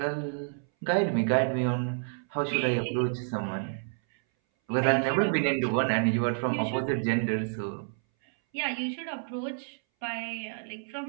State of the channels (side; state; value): left; silent; 58 dB below the other